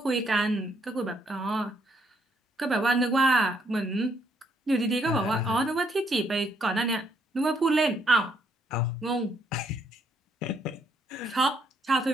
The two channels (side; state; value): both; normal; correlation 0.71